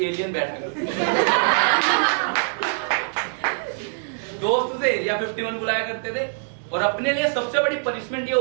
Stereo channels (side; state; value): left; silent; 63 dB below the other